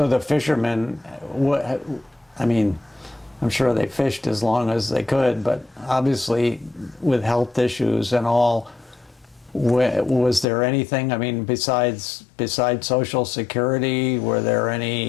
the fishermen, I mean, I'm sure they fished as long as they could, but obviously with health issues and all, was there anything, I mean, besides Social Security, were there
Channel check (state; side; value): drops out; right; at 10.5 s